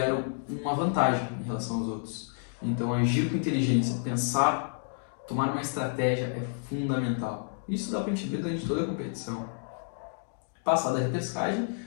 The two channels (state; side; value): silent; right; digital silence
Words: uma vantagem em relação aos outros. Então, agir com inteligência, pensar, tomar uma estratégia é fundamental. Isso dá para a gente ver durante toda a competição. Passada a repescagem,